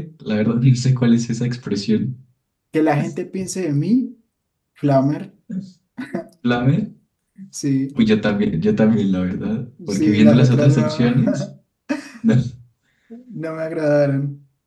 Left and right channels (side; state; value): both; identical; correlation 1.00